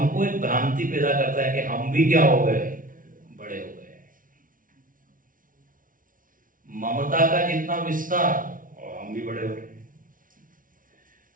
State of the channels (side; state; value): left; late; 0.39 ms